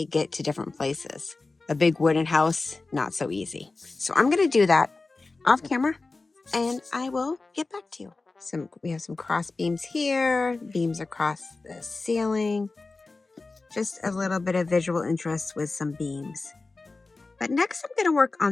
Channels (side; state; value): right; quieter; 3.6 dB